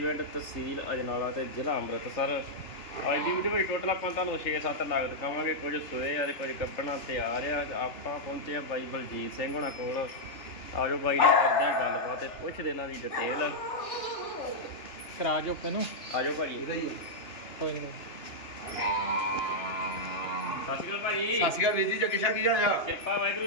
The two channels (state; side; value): late; right; 3.4 ms